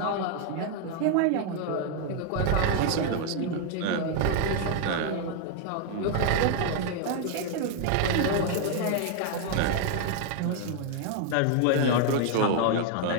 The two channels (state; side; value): different; both; correlation 0.00